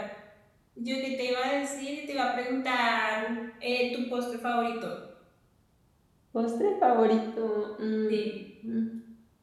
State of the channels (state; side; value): identical; both; correlation 1.00